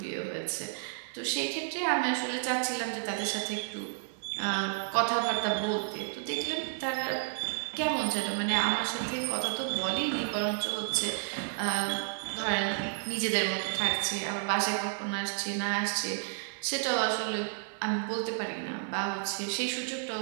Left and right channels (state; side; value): silent; left; digital silence